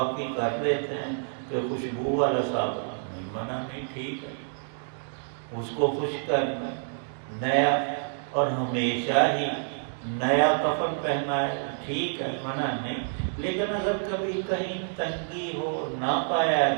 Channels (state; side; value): silent; left; digital silence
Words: کر لیتے ہیں کہ خوشبو والا صابن نہیں، منع نہیں، ٹھیک ہے، اس کو خشک کرنا، نیا اور ہمیشہ ہی نیا کفن پہنا ہے، ٹھیک ہے، منع نہیں، لیکن اگر کبھی کہیں تنگی ہو نہ پایا